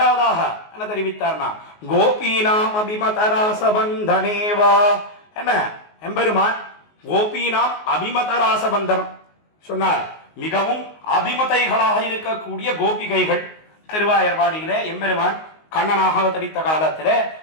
என்ன தெரிவித்தார்னா, கோபீனாம் அபிமதராசபந்தனேவா என்ன, எம்பெருமான் கோபீனாம் அபிமதராசபந்தனம் சொன்னார். மிகவும் அபிமதைகளாக இருக்கக்கூடிய கோபிகைகள் திருவாயர்பாடியிலே எம்பெருமான் கண்ணனாக அவதரித்த காலத்திலே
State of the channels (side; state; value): right; late; 19 ms